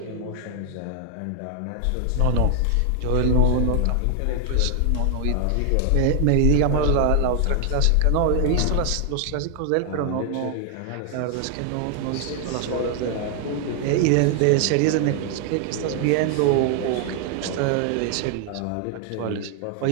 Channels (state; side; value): different; both; correlation 0.00